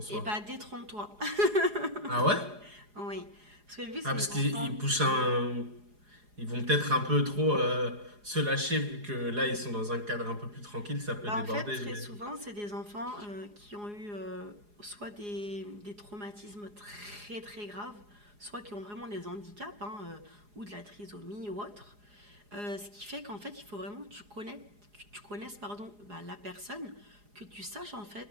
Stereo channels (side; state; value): left; late; 4.8 ms